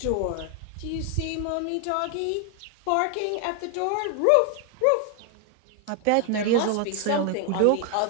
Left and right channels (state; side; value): different; both; correlation 0.00